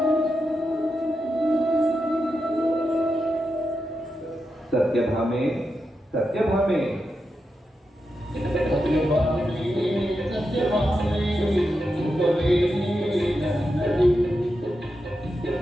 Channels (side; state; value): both; normal; correlation 0.87